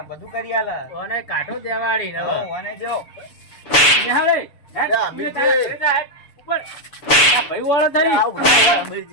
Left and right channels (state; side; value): late; right; 6.9 ms